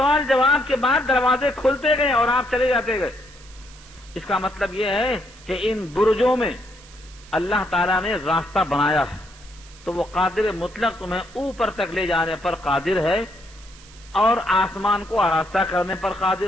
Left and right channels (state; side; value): noise; right; hiss, 22 dB below the sound